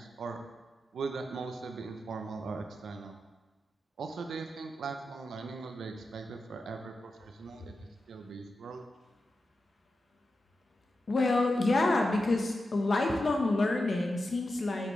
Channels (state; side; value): normal; both; correlation 0.90